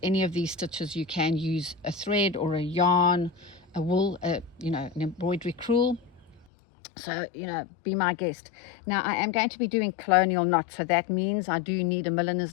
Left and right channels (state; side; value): drops out; right; at 6.5 s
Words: any of these stitches you can use a thread or a yarn, a wool, an embroidery crewel. So, be my guest. Now, I am going to be doing colonial knots, so that means I do need a